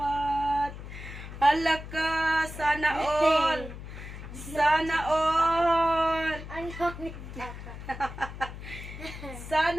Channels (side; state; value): left; noise; hum, 11 dB below the sound